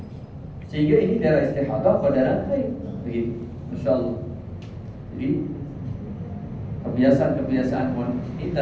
Sehingga ini darah istihadah atau darah haid, begitu. Masya Allah. Jadi kebiasaan-kebiasaan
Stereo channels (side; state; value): both; identical; correlation 1.00